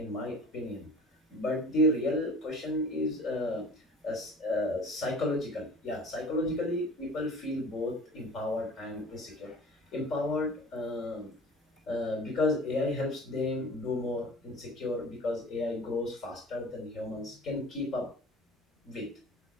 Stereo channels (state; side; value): normal; both; correlation 0.42